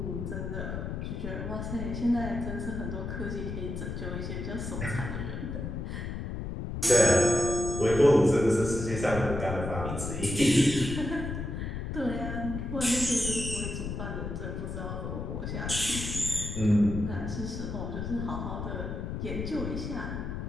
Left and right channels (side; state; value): left; noise; rumble, 5 dB below the sound